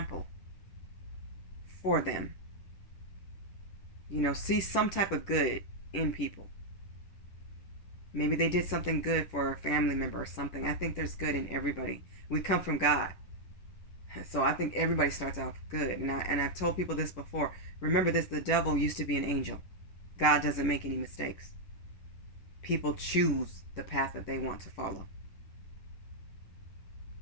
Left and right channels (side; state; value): right; late; 10 ms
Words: for them. You know, see some type of good in people. Maybe they did something good for a family member or something. I think there's good in everybody. We come from God. So I think everybody starts off good. And I've told people this before. Remember this, the devil used to be an angel. God doesn't make any mistakes. People choose the path that they want to follow.